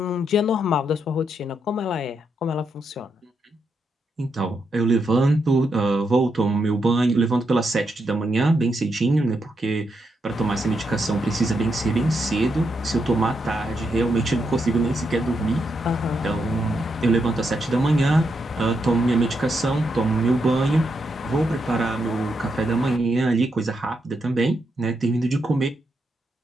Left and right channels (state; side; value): normal; both; correlation 0.82